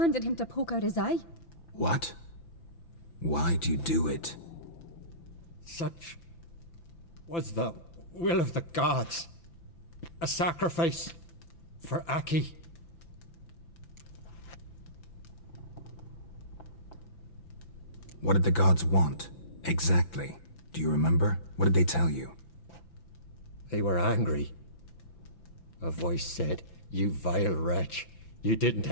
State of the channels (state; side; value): late; right; 5.9 ms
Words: him to poke out his eye. What? Why'd you do it? Such was the will of the gods. A sacrifice for Aki. What did the gods want? Exactly. Do you remember? What did they tell you? They were angry. A voice said, "You vile wretch, you didn't